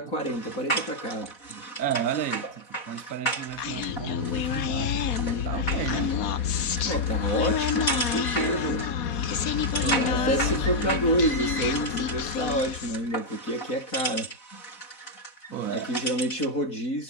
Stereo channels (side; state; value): right; late; 4.0 ms